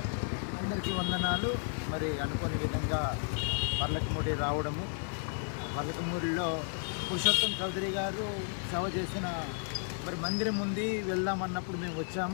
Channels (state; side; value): silent; right; 56 dB below the other